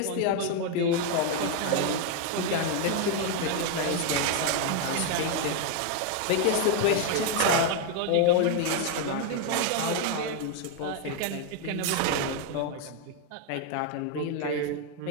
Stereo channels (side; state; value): both; different; correlation 0.01